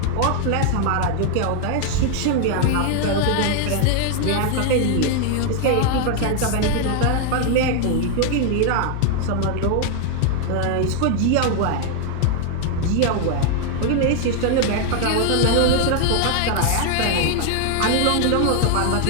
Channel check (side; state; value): both; different; correlation 0.00